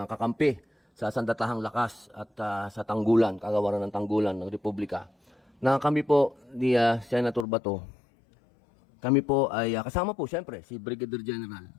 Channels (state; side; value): drops out; right; at 7.5 s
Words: kakampi sa Sandatahang Lakas at sa Tanggulan, Kagawaran ng Tanggulan ng Republika, na kami po ni Senator Bato, kami po ay kasama po siyempre si Brigadier General.